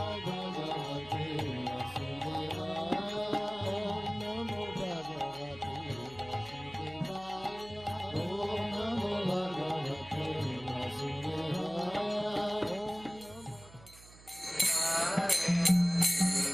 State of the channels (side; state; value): right; noise; hum, 21 dB below the sound